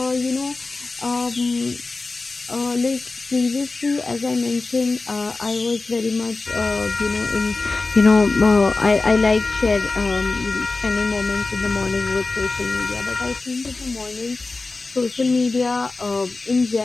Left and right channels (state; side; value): quieter; right; 3.6 dB